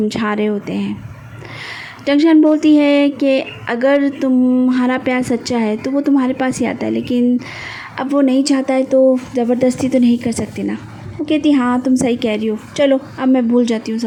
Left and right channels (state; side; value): identical; both; correlation 1.00